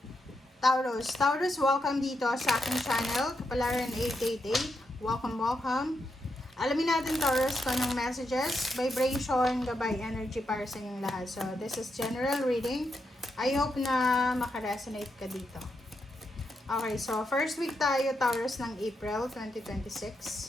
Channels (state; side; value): normal; both; correlation 0.83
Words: Taurus. Taurus, welcome dito sa aking channel, Kapalaran 888. Welcome. Alamin natin Taurus kung anong messages, vibration, gabay, energy para sa inyong lahat. So, this is general reading. I hope na makaresonate ka dito. Okay, so first week tayo, Taurus, ng April